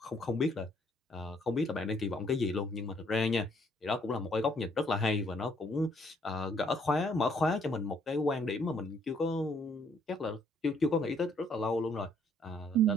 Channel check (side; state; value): both; normal; correlation 0.66